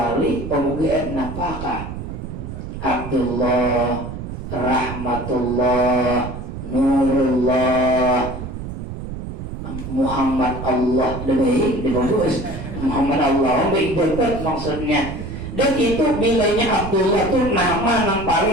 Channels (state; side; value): noise; right; rumble, 8 dB below the sound